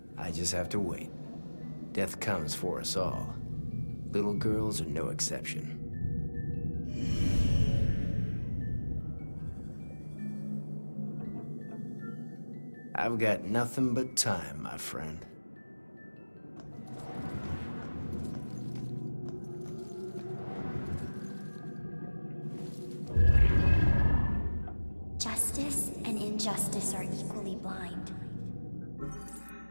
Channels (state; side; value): inverted; both; correlation -1.00